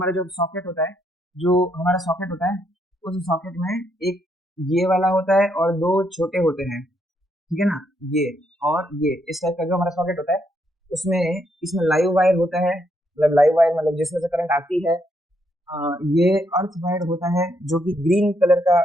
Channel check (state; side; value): normal; both; correlation 0.75